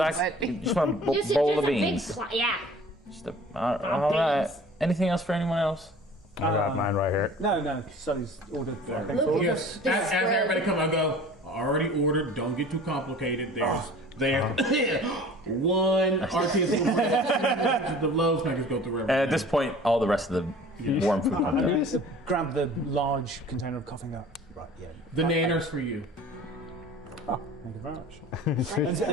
just want a Just bowl a of big beans? yeah. Just all right. beans. Anything else for anyone else? I got mine right here. No, Sully's ordered. I think Look, Yes. this As spread- everybody come, I go. Already ordered. Don't get too complicated. There's one artisan bread. The loaves can just go through everything. And at this point, all the rest of the warm food comes I'm out. going to grab the large container of coffee and go, right, yeah. The nanners for you. Oh, thank you very much. And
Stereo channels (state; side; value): normal; both; correlation 0.45